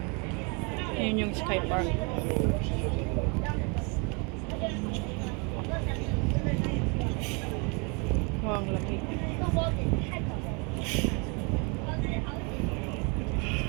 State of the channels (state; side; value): quieter; left; 32.7 dB